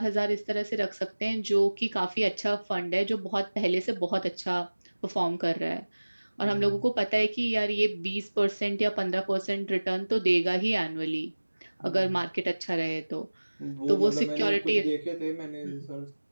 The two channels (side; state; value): both; inverted; correlation -1.00